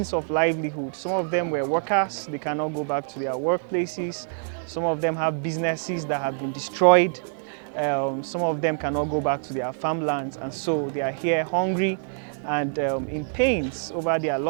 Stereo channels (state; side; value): silent; left; 58 dB below the other